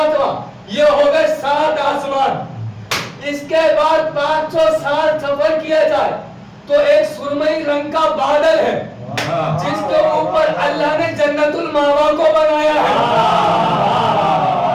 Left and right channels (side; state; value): both; identical; correlation 1.00